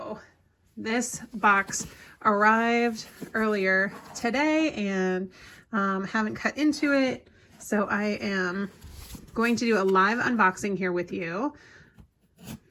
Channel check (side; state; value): both; identical; correlation 1.00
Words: This box arrived earlier today and haven't cut into it, so I am going to do a live unboxing here with you.